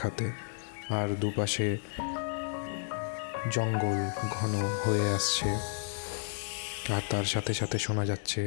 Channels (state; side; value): silent; right; digital silence